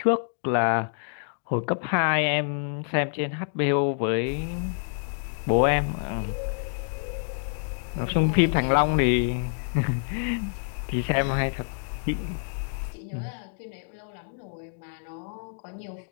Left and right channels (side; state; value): right; silent; 60 dB below the other